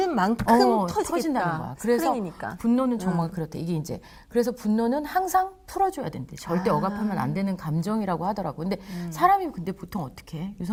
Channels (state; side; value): identical; both; correlation 1.00